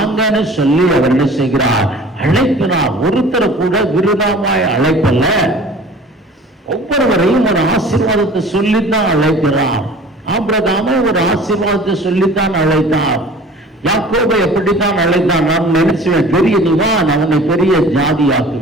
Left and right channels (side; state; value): both; normal; correlation 0.45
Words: சொல்லி அவர் என்ன செய்கிறார்? அழைக்கிறார். ஒருத்தரை கூட விருதாவாய் அழைப்பல்ல, ஒவ்வொருவரையும் ஒரு ஆசீர்வாதத்தை சொல்லித்தான் அழைக்கிறார். ஆபிரகாமை ஒரு ஆசீர்வாதத்தை சொல்லித்தான் அழைத்தார். யாக்கோபை எப்படித்தான் அழைத்தான்? நான் நினைச்சுவேன், பெரிய நீ வா, நான் உன்னை பெரிய